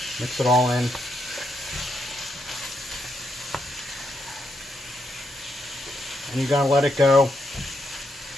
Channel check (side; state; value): both; normal; correlation 0.80